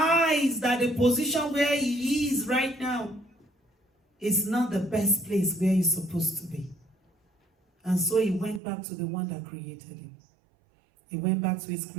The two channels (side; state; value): left; drops out; at 8.6 s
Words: that the position where he is right now is not the best place where he's supposed to be. And so he went back to the one that created him. He went back to his